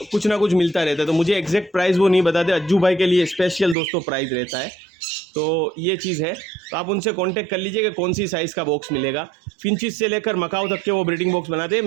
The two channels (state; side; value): drops out; left; at 3.8 s